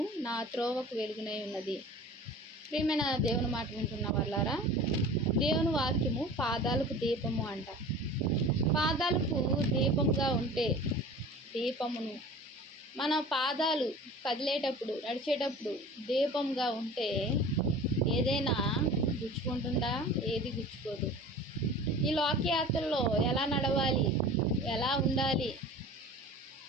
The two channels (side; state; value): both; normal; correlation 0.40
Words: నా త్రోవకు వెలుగునై ఉన్నది. ప్రియమైన దేవుని మాట వింటున్న వాళ్ళారా, దేవుని వాక్యము పాదాలకు దీపము అంట. పాదాలకు దీపంగా ఉంటే దీపమును మన పాదాలు కదిలేటప్పుడు, నడిచేటప్పుడు దీపంగా ఉంటే ఏదైనా గుచ్చుకుంటుందా? ఏది గుచ్చుకోదు. ఈ లోకయాత్రలో ఎలా నడవాలి, ఎలా ఉండాలి